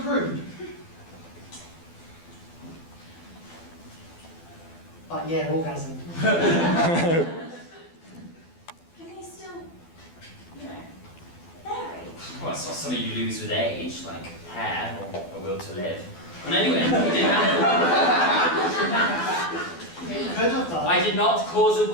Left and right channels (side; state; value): right; late; 12 ms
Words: But yeah, orgasm. Can they still, you know, vary? Well, it's not something you lose with age, like hair or a will to live. And anyway, it didn't happen. You could have done. I did not cause a